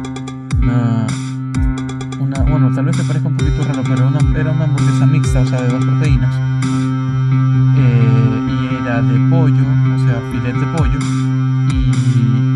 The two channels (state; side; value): identical; both; correlation 1.00